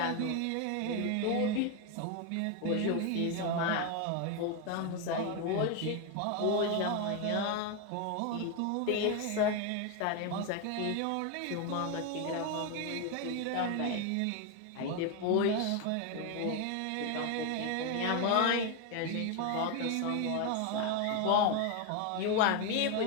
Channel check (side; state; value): both; different; correlation 0.01